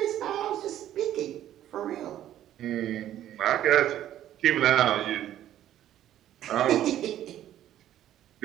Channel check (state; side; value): quieter; left; 12.0 dB